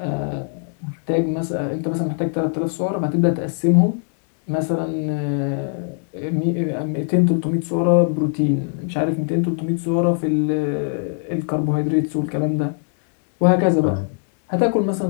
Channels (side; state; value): right; silent; 64 dB below the other